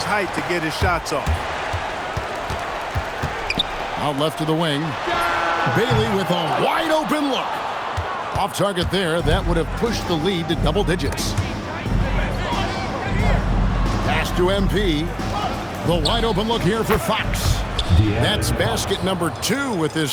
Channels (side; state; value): both; identical; correlation 1.00